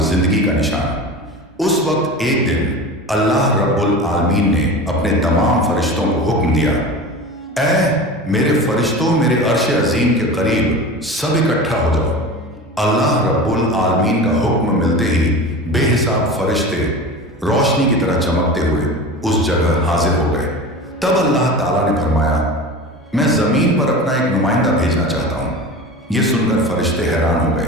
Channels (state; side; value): normal; both; correlation 0.32